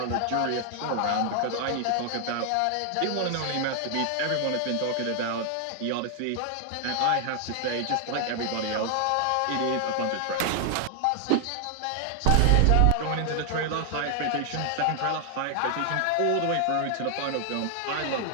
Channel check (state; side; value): different; both; correlation 0.00